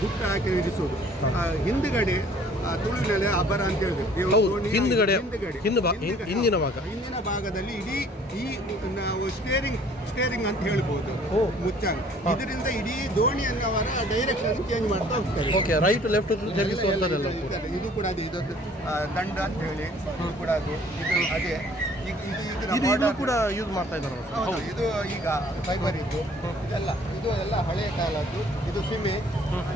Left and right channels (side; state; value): both; normal; correlation 0.55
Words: ಹುಟ್ಟು ಹಾಕಿ ಇರಿಸುವುದು. ಹಿಂದುಗಡೆ ತುಳುವಿನಲ್ಲಿ ಅಬರ ಅಂತ ಹೇಳಿದ್ರು. ಹಿಂದಿನ ಭಾಗದಲ್ಲಿ ಇಡೀ ಈ ನಾವು ಸ್ಟೇರಿಂಗ್ ಅಂತ ಹೇಳ್ಬೋದು, ಮುಚ್ಚಂಗ್. ಇದರಿಂದ ಇಡೀ ದೋಣಿಯನ್ನು ಅವರ ಡೈರೆಕ್ಷನ್ ಚೇಂಜ್ ಮಾಡ್ತಾ ಹೋಗ್ತಾರೆ. ರೈಟ್ ಲೆಫ್ಟ್ ಇದು ಕೂಡ ಅದು ಇದೊಂದು ದಂಡ ಅಂತ ಹೇಳಿ ಇದು ಕೂಡ ಅದು ಇದು ಅದೇ ಇದು ಕೂಡ ಯೂಸ್ ಮಾಡ್ತಾ ಇದ್ದಾರೆ. ಇದು ಈಗ ಫೈಬರ್ ಇದು ಇದು ಎಲ್ಲ ಹಳೆಯ ಕಾಲದ್ದು. ಇದು ಸೀಮೆ,